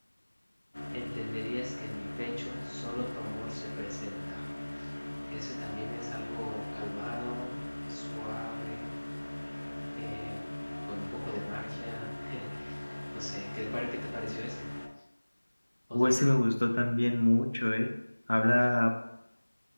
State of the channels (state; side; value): inverted; both; correlation -1.00